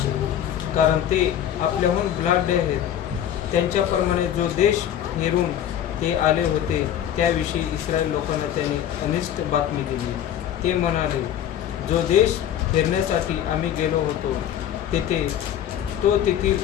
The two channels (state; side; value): quieter; right; 10.5 dB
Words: कारण ते आपल्याहून बलाढ्य आहेत. त्यांच्याप्रमाणे जो देश हेरून ते आले होते त्याविषयी इस्रायल लोकांना त्यांनी अनिष्ट बातमी दिली. ते म्हणाले, जो देश फिरण्यासाठी आम्ही गेलो होतो तो तेथील